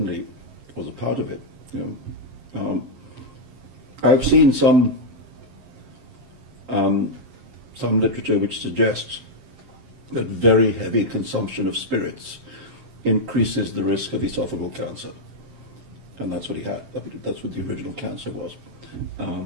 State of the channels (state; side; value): late; left; 7.6 ms